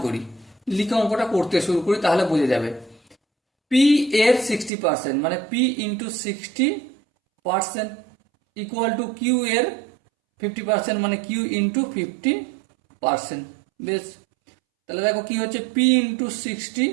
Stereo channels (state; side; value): drops out; left; at 4.7 s